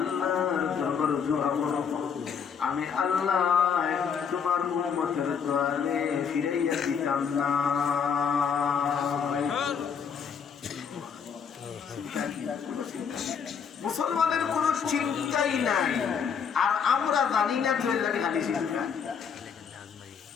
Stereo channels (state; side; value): quieter; right; 6.8 dB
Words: দরবারে দোয়া করব, আমি আল্লাহ তোমার উম্মতের দোয়ারে ফিরাইয়া দিতাম না। মুসলমানের কোন চিন্তাই নাই, আর আমরা জানি না তো লাগে খালি চিন্তা।